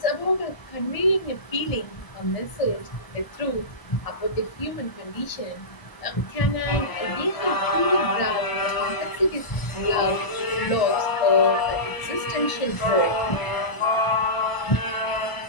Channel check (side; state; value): right; late; 1.0 ms